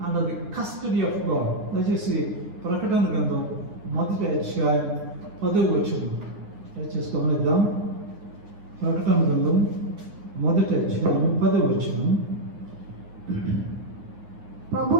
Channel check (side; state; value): left; late; 9.7 ms